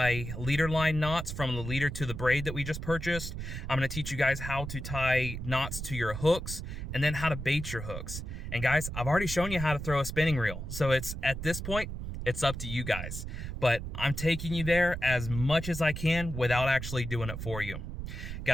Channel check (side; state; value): right; noise; rumble, 6 dB below the sound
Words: leader line knots from the leader to the braid that we just purchased. I'm going to teach you guys how to tie knots to your hooks, and then how to bait your hooks. And guys, I've already shown you how to throw a spinning reel, so it's at this point, it's up to you guys. But I'm taking you there as much as I can without actually doing it for you.